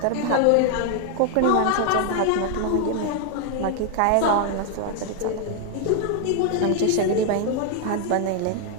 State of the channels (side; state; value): both; different; correlation 0.00